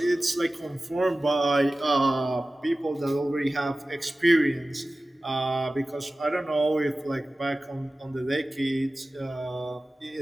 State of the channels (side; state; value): both; normal; correlation 0.96